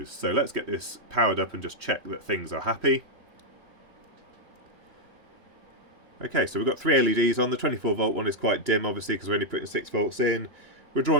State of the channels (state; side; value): late; left; 3.1 ms